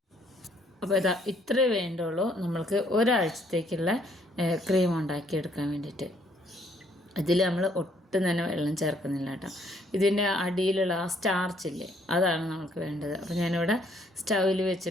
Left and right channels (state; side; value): normal; both; correlation 0.66